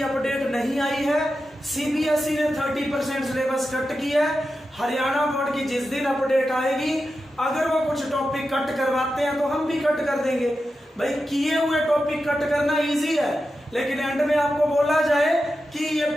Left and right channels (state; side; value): normal; both; correlation 0.90